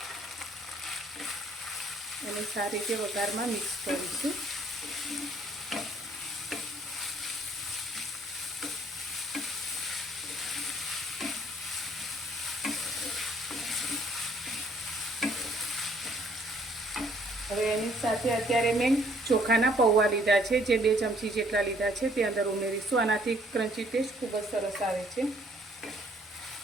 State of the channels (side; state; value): both; normal; correlation 0.63